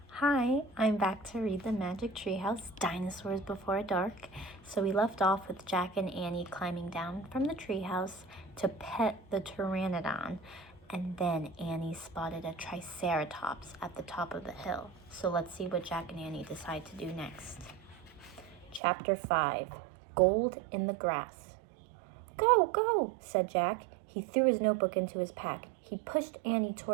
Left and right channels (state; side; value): drops out; left; at 18.8 s